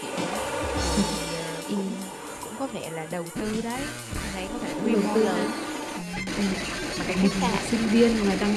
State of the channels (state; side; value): identical; both; correlation 1.00